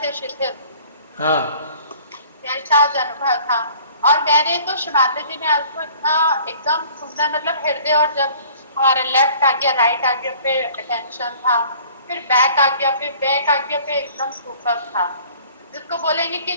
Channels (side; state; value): both; inverted; correlation -0.51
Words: शिथिल, हाँ। वैसा आज अनुभव था। और मैंने तो शिमाता जी ने आज को इतना एकदम सुंदर मतलब हृदय, और जब हमारा लेफ्ट आ गया राइट आ गया पे अटेंशन था, फिर बैक आ गया, फिर बैक आ गया पे एकदम सुपर था, जिसको बोलेंगे कि